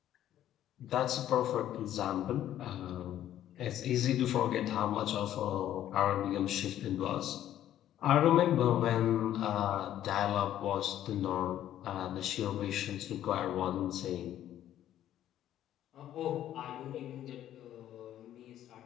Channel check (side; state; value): right; quieter; 11.9 dB